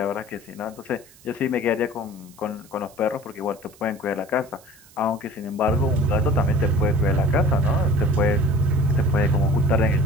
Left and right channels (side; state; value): right; noise; hiss, 26 dB below the sound